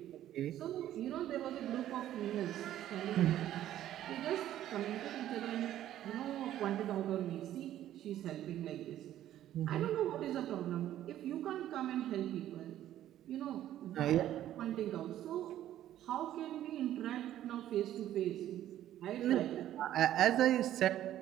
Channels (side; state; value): left; quieter; 12.4 dB